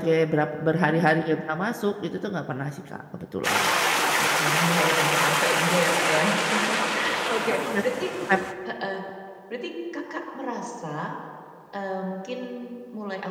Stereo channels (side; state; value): both; identical; correlation 1.00